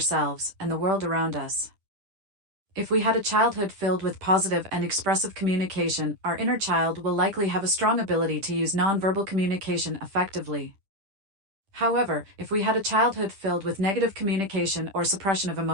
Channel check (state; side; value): late; left; 10 ms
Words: and the world around us. If we had a childhood filled with positive and expressive communication, our inner child will likely have a strong ability to use nonverbal communication effectively. However, if we had a childhood filled with negative communication or suppression of